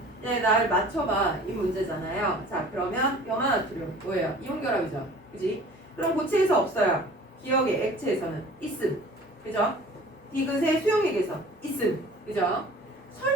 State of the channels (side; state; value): both; normal; correlation 0.46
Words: 네, 날 맞춰봐. 이 문제잖아요. 자, 그러면 염화나트륨 뭐예요? 이온결합이죠. 그지? 그럼 고체에서 없어요. 기억에 액체에서는 있음. 그죠? 디귿의 수용액에서 있음. 그죠?